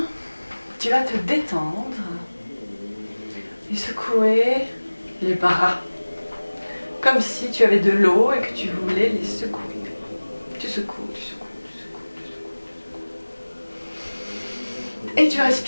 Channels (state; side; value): inverted; both; correlation -1.00